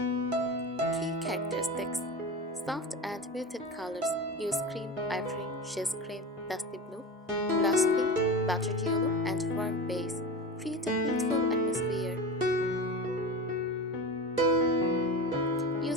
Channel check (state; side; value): normal; both; correlation 0.27